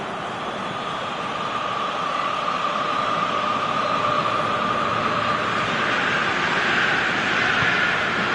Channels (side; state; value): both; identical; correlation 1.00